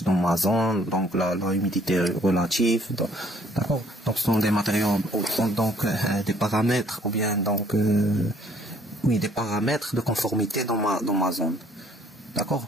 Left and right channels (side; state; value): both; normal; correlation 0.62